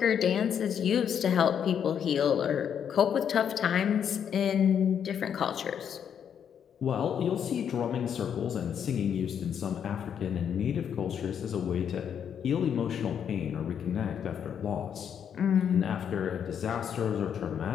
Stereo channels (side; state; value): right; quieter; 8.3 dB